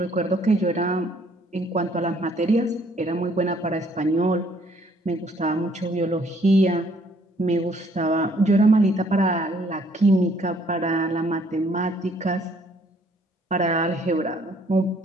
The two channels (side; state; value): both; normal; correlation 0.63